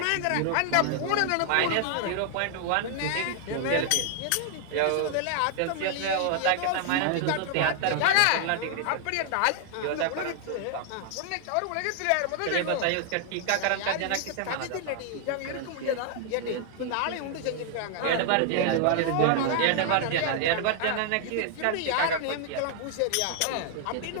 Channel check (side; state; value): both; different; correlation 0.00